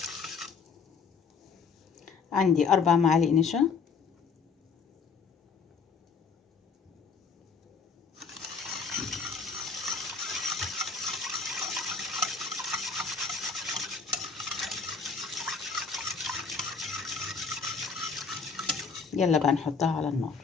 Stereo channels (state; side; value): quieter; right; 5.2 dB